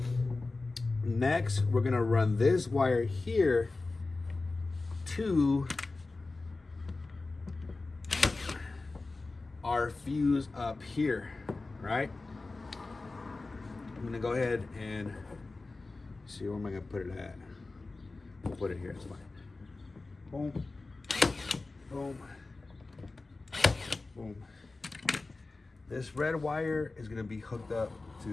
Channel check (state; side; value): quieter; right; 3.5 dB